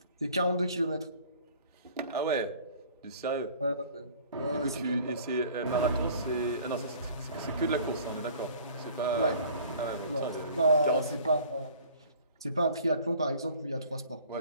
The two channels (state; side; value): inverted; both; correlation -0.50